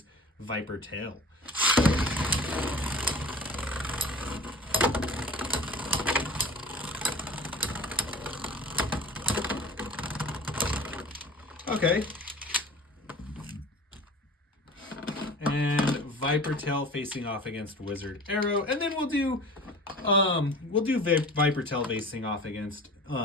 Viper Tail. Okay. And Viper Tail facing off against Wizard Arrow. And then we'll do Viper Tail facing off against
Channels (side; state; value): both; normal; correlation 0.40